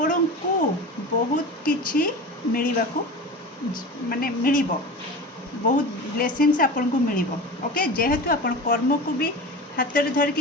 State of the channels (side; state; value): both; normal; correlation 0.31